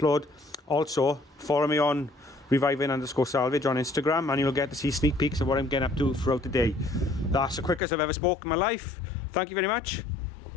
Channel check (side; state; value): right; drops out; at 7.8 s